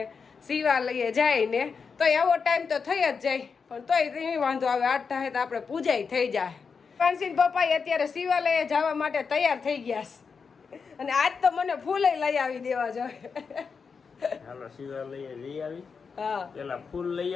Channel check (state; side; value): quieter; right; 5.5 dB